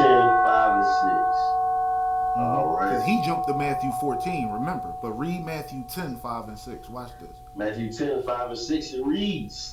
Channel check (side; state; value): both; identical; correlation 1.00